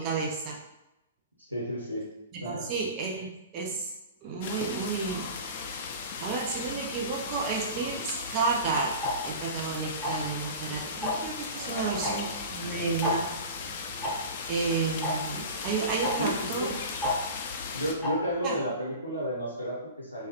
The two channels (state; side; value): inverted; both; correlation -0.33